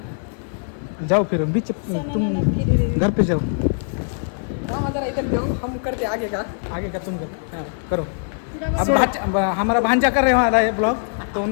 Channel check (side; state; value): right; silent; 57 dB below the other